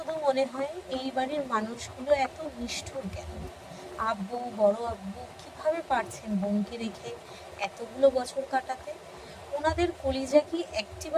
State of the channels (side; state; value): both; identical; correlation 1.00